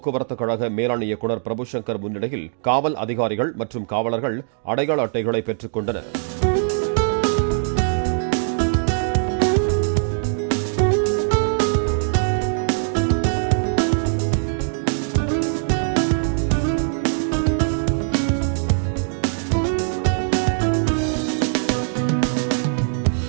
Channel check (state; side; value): silent; left; digital silence